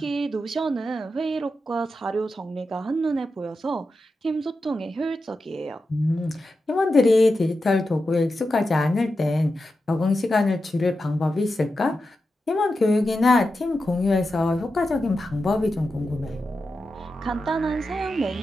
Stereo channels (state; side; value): normal; both; correlation 0.90